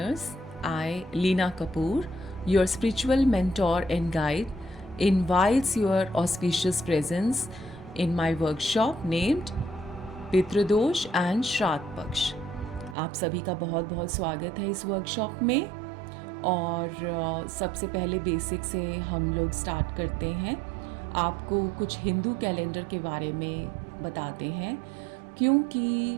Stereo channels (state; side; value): drops out; left; at 13.0 s